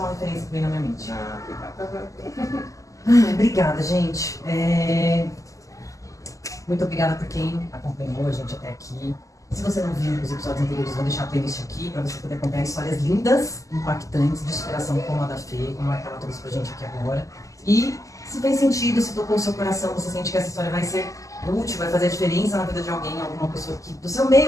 referência que vem na minha mente. Obrigada, gente. Muito obrigada por quem acompanhou a gente até aqui. Se você não viu os episódios anteriores, vou deixar a playlist aqui para você poder acompanhar histórias lindas, impactantes, de superação como a da Fê, como a que ela trouxe pra gente aqui agora. E se fez sentido, se tocou o seu coração, você sente que essa história vai ser útil, vai fazer a diferença na vida de alguém, alguma pessoa que, do seu meio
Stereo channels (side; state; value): right; late; 0.16 ms